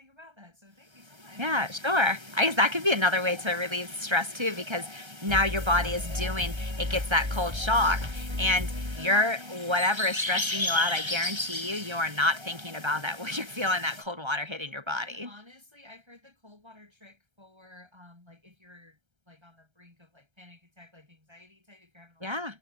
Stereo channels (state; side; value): late; left; 1.3 ms